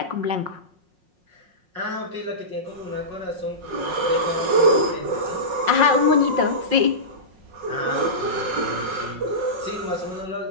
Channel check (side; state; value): left; late; 5.5 ms